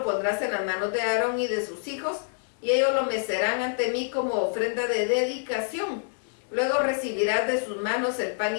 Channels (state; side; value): silent; right; 60 dB below the other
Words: pondrás en las manos de Aarón y de sus hijos, y ellos lo mecerán ante mí como ofrenda de dedicación. Luego recibirás de sus manos el pan